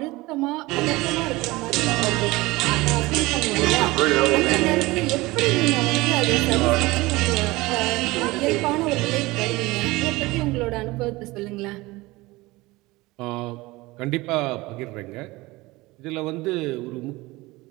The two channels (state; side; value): quieter; left; 20.9 dB